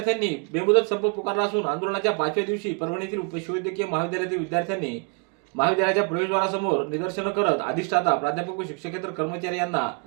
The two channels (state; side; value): quieter; left; 34.9 dB